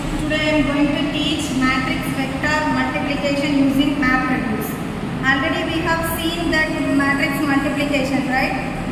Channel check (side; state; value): both; identical; correlation 1.00